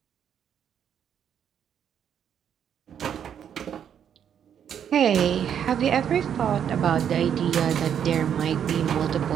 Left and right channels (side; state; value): left; quieter; 8.7 dB